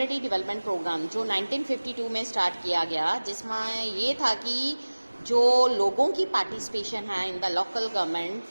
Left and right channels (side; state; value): both; inverted; correlation -1.00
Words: development programme जो 1952 में start किया गया, जिसमें ये था कि जो लोगों की पार्टिसिपेशन है in the local government